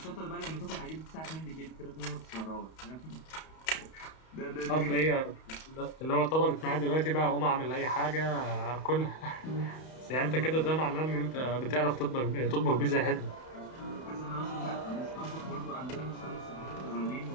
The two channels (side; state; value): right; late; 31 ms